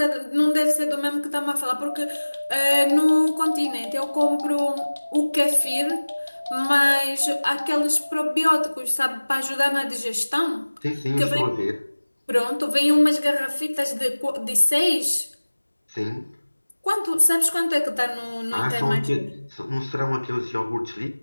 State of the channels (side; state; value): both; inverted; correlation -1.00